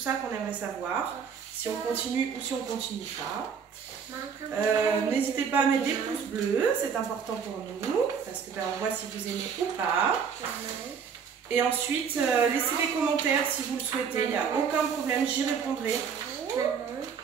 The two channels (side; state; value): left; quieter; 6.7 dB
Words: qu'on aimerait savoir, si on continue ou si on continue pas. N'hésitez pas à mettre des pouces bleus, c'est important pour nous, parce que ben, on voit si vous aimez ou pas. Et ensuite, laissez des commentaires si vous le souhaitez, il n'y a aucun problème, j'y répondrai.